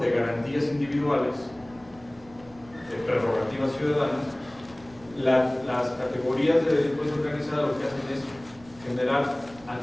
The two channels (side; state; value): right; noise; rumble, 24 dB below the sound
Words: garantías individuales, de prerrogativas ciudadanas, las categorías de delincuencia organizada lo que hacen es generar